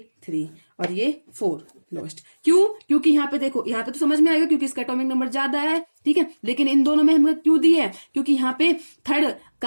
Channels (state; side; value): inverted; both; correlation -1.00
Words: 3 और ये 4 लोएस्ट। क्यों? क्योंकि यहाँ पे देखो, यहाँ पे तो समझ में आएगा क्योंकि इसका एटॉमिक नंबर ज्यादा है, ठीक है। लेकिन इन दोनों में हमने क्यों दी है? क्योंकि यहाँ पे थर्ड